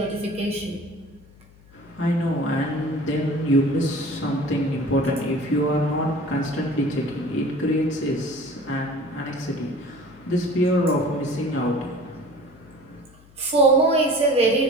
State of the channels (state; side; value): noise; left; hum, 26 dB below the sound